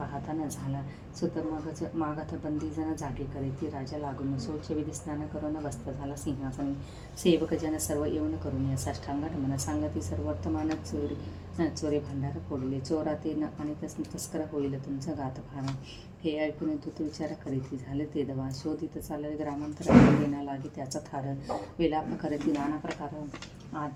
न झाला. सुत मागत बंदीजन जागे करीती राजा लागून. शौचविधी स्नान करून बसता झाला सिंहासनी. सेवकजन सर्व येऊन करून या साष्टांग नमन. सांगती सर्व वर्तमान चोरे भांडार फोडले. चोराते आणि तस्कर होईल तुमचा घात फार. हे ऐकून दूत विचार करीती झाले ते दवा शोधित चालले ग्रामांतरात येण्या लागे त्याचा थार विलाप करीती नाना प्रकार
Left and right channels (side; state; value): both; identical; correlation 1.00